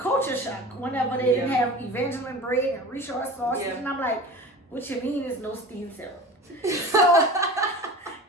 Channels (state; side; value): normal; both; correlation 0.36